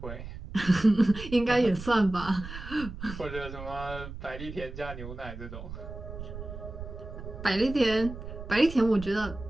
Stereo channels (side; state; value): right; noise; rumble, 11 dB below the sound